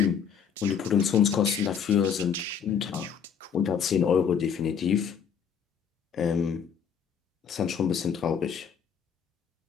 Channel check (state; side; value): quieter; right; 7.3 dB